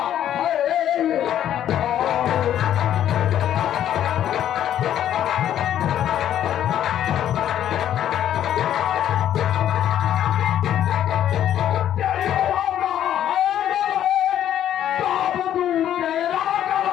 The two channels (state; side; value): quieter; right; 10.9 dB